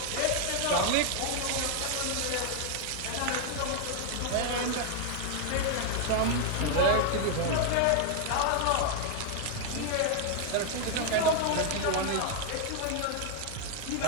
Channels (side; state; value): both; different; correlation 0.00